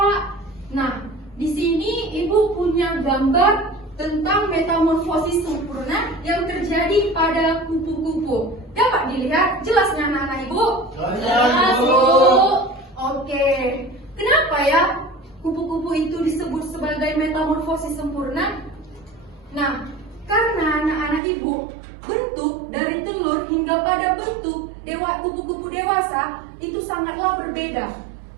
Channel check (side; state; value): left; drops out; at 21.2 s